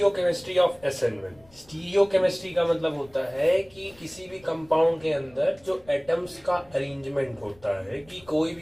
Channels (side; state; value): left; noise; rumble, 28 dB below the sound